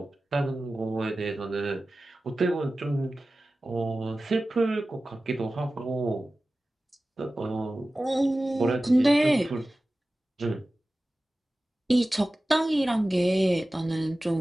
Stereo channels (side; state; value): both; normal; correlation 0.96